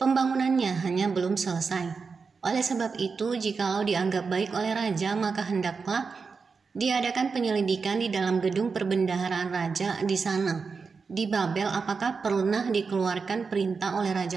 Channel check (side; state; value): left; quieter; 5.0 dB